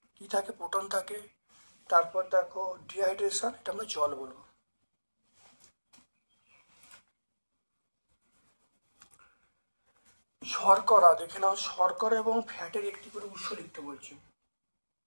কি থাকে, প্রোটন থাকে, তারপর দেখো ডিহাইড্রেশন, এটা আমরা জল বলবো। শর্করা, দেখে নাও শর্করা এবং ফ্যাটের একটি করে উৎস লিখতে বলছি।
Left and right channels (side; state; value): both; inverted; correlation -1.00